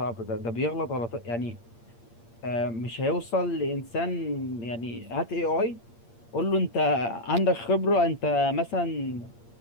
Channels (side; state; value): right; late; 8.6 ms